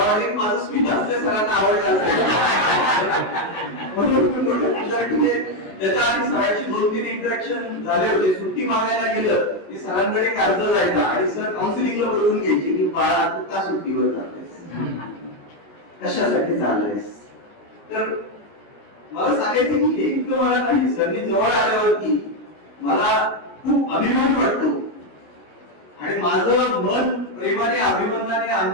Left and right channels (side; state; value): right; late; 19 ms